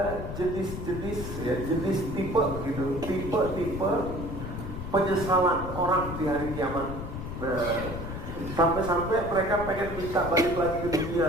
jenis-jenis, ya, jenis tipe gitu, tipe penyesalan orang di hari kiamat. Nah, sampai-sampai mereka pengen minta balik lagi ke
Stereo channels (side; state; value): left; noise; rumble, 7 dB below the sound